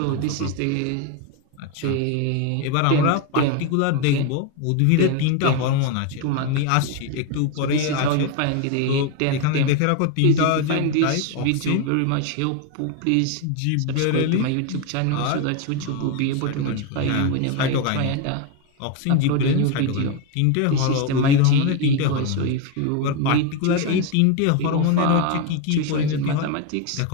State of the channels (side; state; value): both; different; correlation 0.02